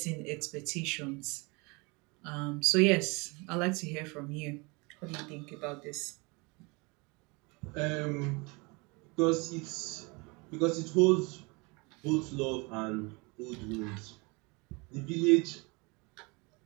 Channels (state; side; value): quieter; left; 28.2 dB